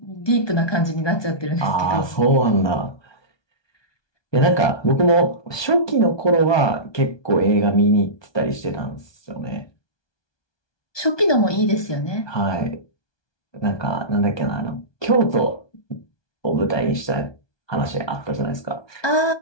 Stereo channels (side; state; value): right; late; 1.2 ms